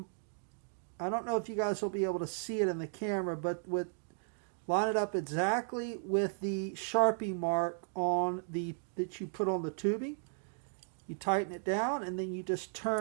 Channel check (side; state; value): left; silent; digital silence